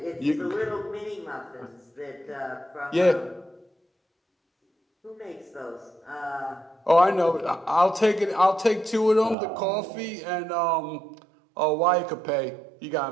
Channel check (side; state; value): left; drops out; at 9.3 s